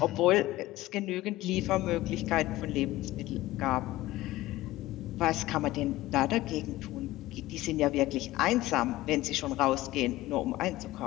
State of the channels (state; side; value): quieter; right; 17.2 dB